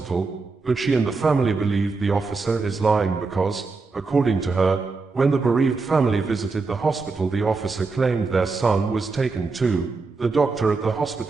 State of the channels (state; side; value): quieter; left; 4.1 dB